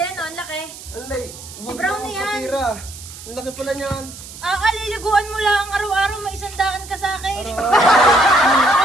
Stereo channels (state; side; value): noise; right; hiss, 15 dB below the sound